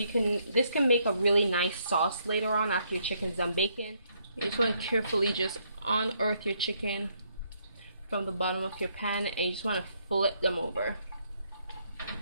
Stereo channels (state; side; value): inverted; both; correlation -0.72